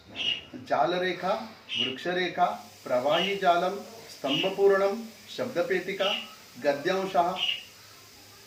जालरेखा, वृक्षरेखा, प्रवाही जालम, स्तंभपूर्णम, शब्दपेटिका, गद्यांशः.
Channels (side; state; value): both; identical; correlation 1.00